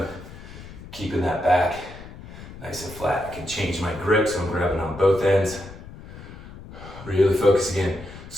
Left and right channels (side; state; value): left; noise; rumble, 15 dB below the sound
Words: Keeping that back nice and flat. I can change my grip, so I'm grabbing on both ends. Really focus again.